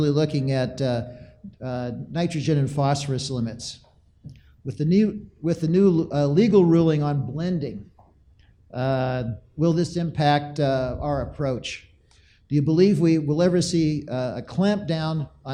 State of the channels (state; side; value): identical; both; correlation 1.00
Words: looking at nitrogen and phosphorus limits. With the new legal ruling on blending, will this impact our approach? Do you believe we will ever see a clamp down